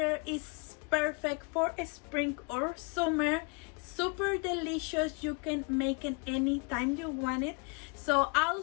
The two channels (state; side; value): quieter; right; 32.0 dB